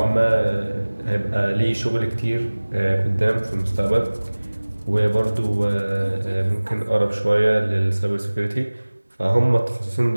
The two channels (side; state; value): both; inverted; correlation -1.00